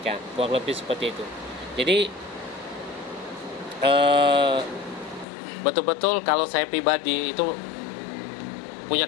Kurang lebih seperti itu. Jadi betul-betul kalau saya pribadi itu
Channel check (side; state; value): right; drops out; at 5.2 s